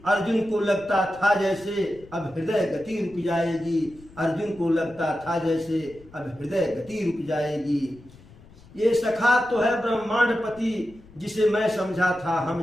अर्जुन को लगता था जैसे अब हृदय गति रुक जाएगी, अर्जुन को लगता था जैसे अब हृदय गति रुक जाएगी। ये सखा तो है ब्रह्मांडपति जिसे मैं समझा था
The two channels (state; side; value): noise; left; rumble, 23 dB below the sound